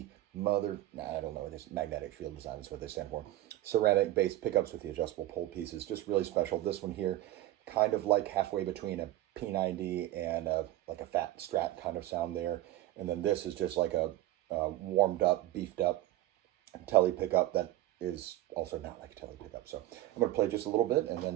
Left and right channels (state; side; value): quieter; left; 15.1 dB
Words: I don't know, it's magnetic field design is what they stand for. Ceramic based pickups with the adjustable pole pieces, just really special. This one here, kind of like halfway between a P90 and like a fat Strat kind of sound there. And then this is just like a warmed up, beefed up telly pickup that is also not like a telly pickup. So I'm going to play just a little bit and